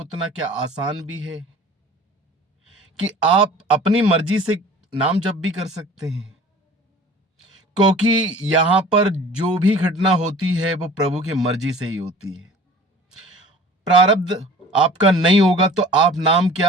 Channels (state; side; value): normal; both; correlation 0.45